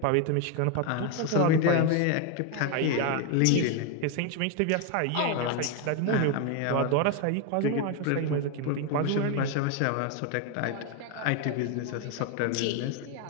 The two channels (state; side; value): different; both; correlation 0.01